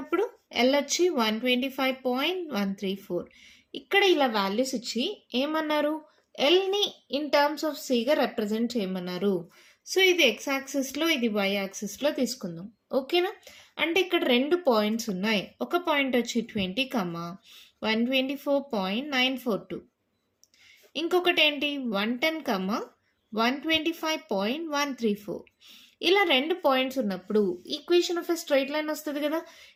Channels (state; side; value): identical; both; correlation 1.00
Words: ఎల్ వచ్చి 125.134. ఇక్కడ ఇలా వాల్యూస్ ఇచ్చి ఏమన్నారు, ఎల్ని ఇన్ టర్మ్స్ ఆఫ్ సిగా రిప్రజెంట్ చేయమన్నారు. సో ఇది ఎక్స్ యాక్సిస్లో, ఇది వై యాక్సిస్లో తీసుకుందాం. ఓకేనా? అంటే ఇక్కడ రెండు పాయింట్స్ ఉన్నాయి. ఒక పాయింట్ వచ్చి 20, 124.942, ఇంకొకటి ఏంటి 110, 125.134. ఇలా రెండు పాయింట్స్ ఉన్నప్పుడు equation of a straight line వస్తుంది కదా.